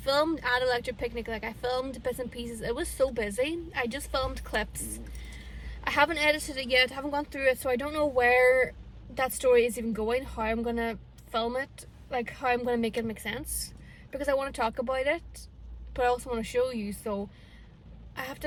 at Electric Picnic, like I filmed bits and pieces. It was so busy. I just filmed clips. I haven't edited it yet, haven't gone through it, so I don't know where that story is even going, how I'm gonna film it, like how I'm gonna make it make sense. Because I want to talk about it, but I also want to show you, so I have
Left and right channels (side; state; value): both; identical; correlation 1.00